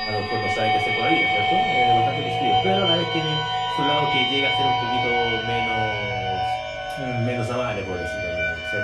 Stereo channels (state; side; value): identical; both; correlation 1.00